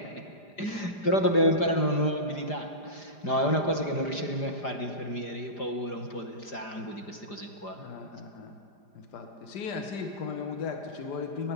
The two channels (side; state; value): right; late; 5.0 ms